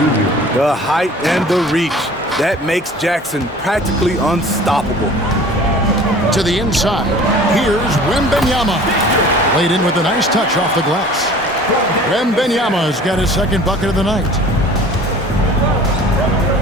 The height and the reach. That makes Jackson practically unstoppable. To the inside. Here's Wembanyama. Laid in with a nice touch off the glass. Wembanyama's got his second bucket of the night.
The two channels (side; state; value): both; normal; correlation 0.46